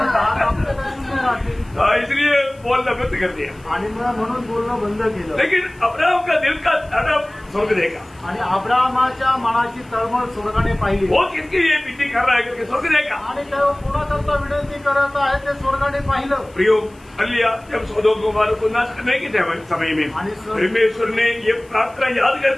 10 कापले तर 0 राहतील। इसलिए बोलना बंद कर दिया। आणि म्हणून बोलणं बंद केलं। लेकिन अब्राहम का दिल का तड़प स्वर्ग देखा। आणि अब्राहमाच्या मनाची तळमळ स्वर्गाने पाहिली। वो किसके लिए विनती कर रहा है करके स्वर्ग देखा। आणि तेव्हा कोणाकरता विनंती करत आहे ते स्वर्गाने पाहिलं। प्रियो अलिया जब सदोम गोमोरा को नाश करने के समय में परमेश्वर ने ये प्रार्थना याद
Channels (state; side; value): noise; left; hiss, 29 dB below the sound